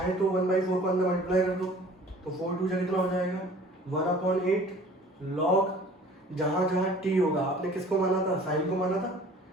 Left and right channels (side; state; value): both; normal; correlation 0.49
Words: तो 1/4 को अंदर मल्टीप्लाई कर दो, तो 4 2 कितना हो जाएगा 1/8 log जहाँ जहाँ टी होगा, आपने किसको माना था साइन को माना था,